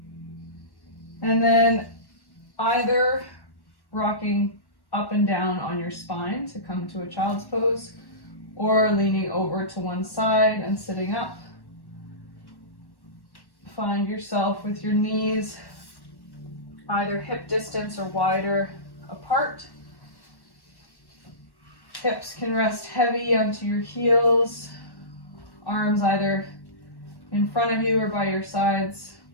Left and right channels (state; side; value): late; right; 1.1 ms